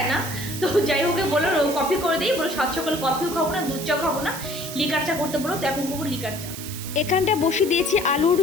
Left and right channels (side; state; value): right; noise; hiss, 10 dB below the sound